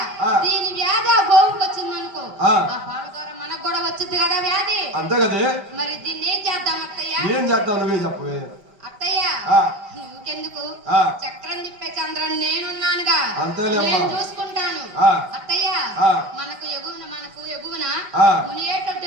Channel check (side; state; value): left; late; 5.5 ms